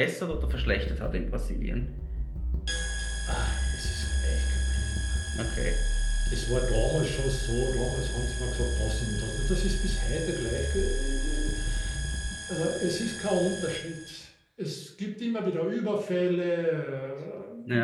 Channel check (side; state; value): both; identical; correlation 1.00